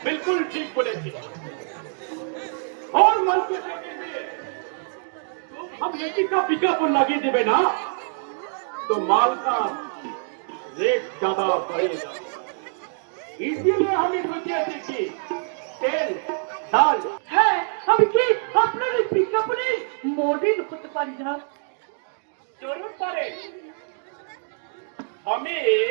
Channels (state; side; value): silent; left; digital silence